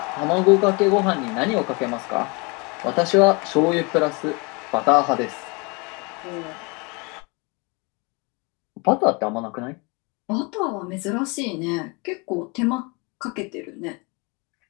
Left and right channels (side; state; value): right; quieter; 29.8 dB